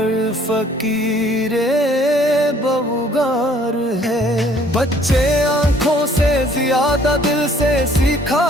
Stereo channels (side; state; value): both; normal; correlation 0.59